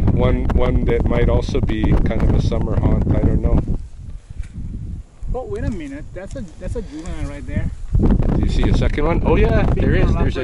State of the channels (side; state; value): both; identical; correlation 1.00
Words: that might also be kind of a summer haunt. I don't know. Oh, wait a minute. That's a juvenile right there. Do you see a second one? Oh yeah, there is. There's a